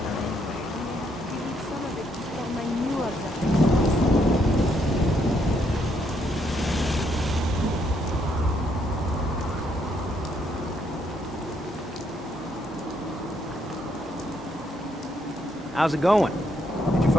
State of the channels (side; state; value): both; normal; correlation 0.73